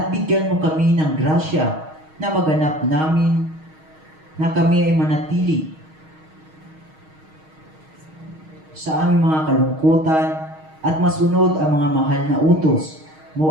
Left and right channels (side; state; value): left; late; 6.4 ms